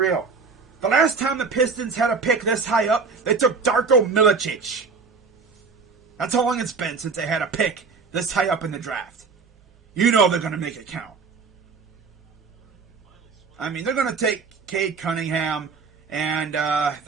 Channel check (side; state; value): left; quieter; 4.9 dB